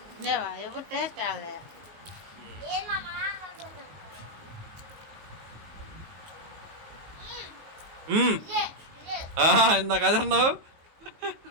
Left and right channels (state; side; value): late; left; 19 ms